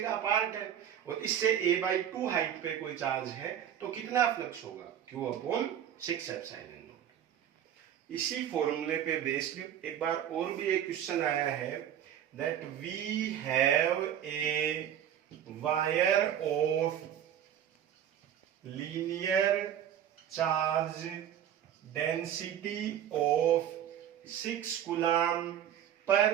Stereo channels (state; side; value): quieter; left; 9.9 dB